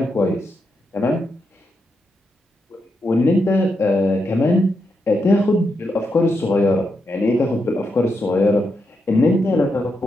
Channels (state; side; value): normal; both; correlation 0.84